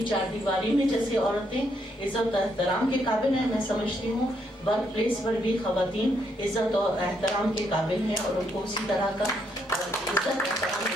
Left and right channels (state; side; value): normal; both; correlation 0.75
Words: चार दीवारी में जैसे औरतें इज्जत और एहतराम के काबिल हैं, मैं समझती हूँ वर्क प्लेस पर भी खवातीन इज्जत और एहतराम के काबिल हैं और उनको उसी तरह का इज्जत एहतराम